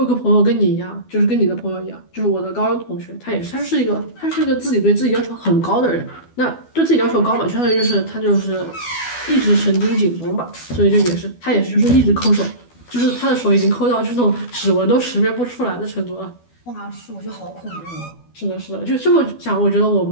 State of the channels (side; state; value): right; late; 12 ms